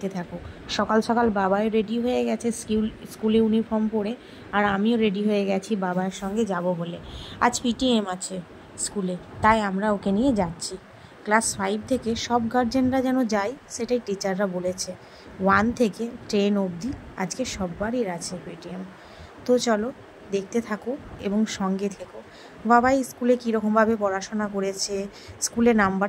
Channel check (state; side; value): identical; both; correlation 1.00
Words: থাকো। সকাল সকাল বাবাই রেডি হয়ে গেছে স্কুলে ইউনিফর্ম পরে, আর আমিও রেডি হয়ে গেছি বাবার সঙ্গে যাব বলে। আজ পিটিএম আছে স্কুলে, তাই আমরা ওকে নিয়ে যাচ্ছি। ক্লাস 5 থেকে সব গার্জেনরা যেন যায়, সেটাই টিচাররা বলেছে। 1 থেকে 10 অবধি আজকে সববারই আছে পিটিএম। তো চলো দেখতে থাকো এবং সঙ্গে থেকো। বাবাই স্কুলে কীরকমভাবে পড়াশোনা করেছে, স্কুলে